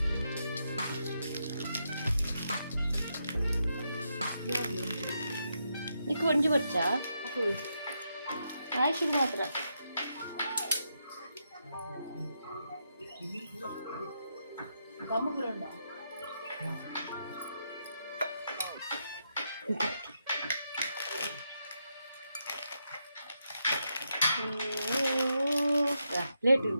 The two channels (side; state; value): both; inverted; correlation -0.82